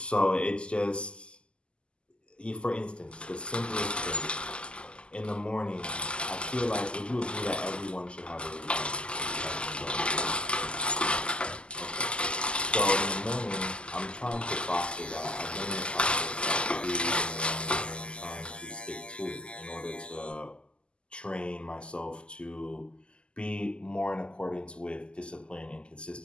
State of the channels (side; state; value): right; late; 0.051 ms